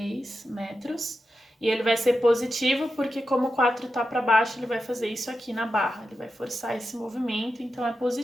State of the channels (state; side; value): normal; both; correlation 0.90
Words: metros. E ele vai ser positivo porque como o 4 tá para baixo, ele vai fazer isso aqui na barra. Ele vai forçar esse movimento, então é